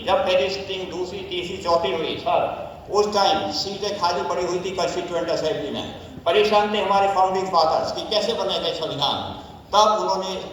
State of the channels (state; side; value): identical; both; correlation 1.00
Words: जब पहली सिटिंग, दूसरी, तीसरी, चौथी हुई सर, उस टाइम सीटें खाली पड़ी हुई थी कॉन्स्टिट्यूएंट असेंबली में। परेशान थे हमारे फाउंडिंग फादर्स कि कैसे बनेगा संविधान। तब उन्होंने